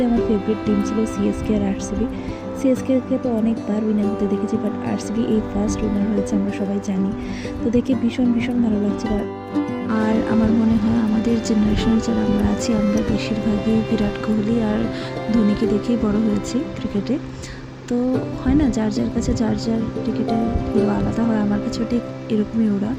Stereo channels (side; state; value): both; identical; correlation 1.00